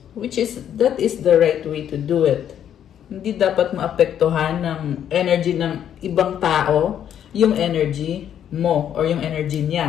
that is the right way to do it. Hindi dapat maapektuhan ng energy ng ibang tao, yung energy mo or yung energy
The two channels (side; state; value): right; quieter; 9.7 dB